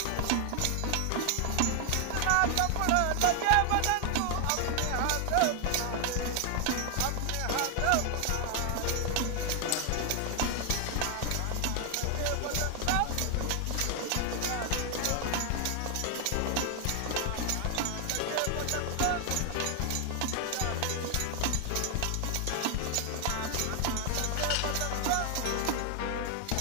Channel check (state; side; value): different; both; correlation 0.00